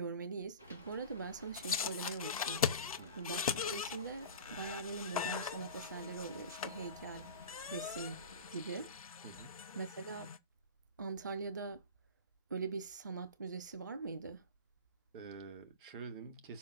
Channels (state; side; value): inverted; both; correlation -0.32